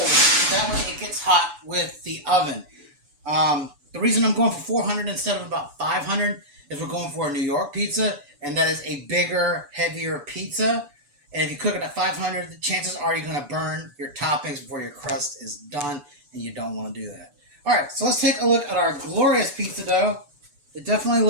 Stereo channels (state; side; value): late; left; 7.0 ms